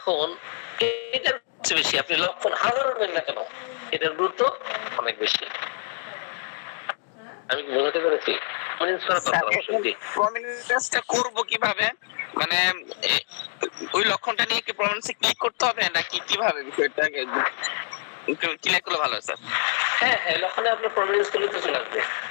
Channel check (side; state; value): right; silent; 59 dB below the other